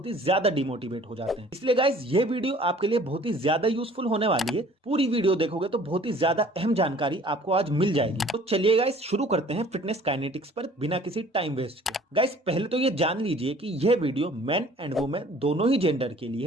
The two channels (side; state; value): both; normal; correlation 0.52